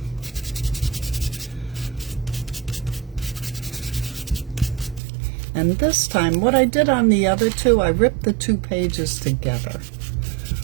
And this time, what I did on the other two, I ripped the two pages together.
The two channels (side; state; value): left; drops out; at 5.0 s